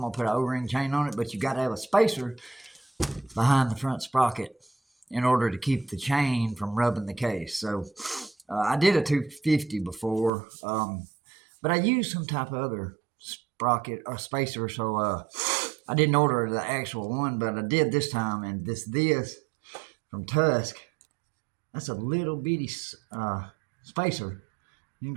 going to put an O-ring chain on it, but you got to have a spacer behind the front sprocket in order to keep the chain from rubbing the case. So I did a 250 before, but I used some type of other sprocket or spacer, so I didn't order the actual one, but I did this time, and this from Tusk. That's a little bitty spacer. You can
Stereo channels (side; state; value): left; drops out; at 10.3 s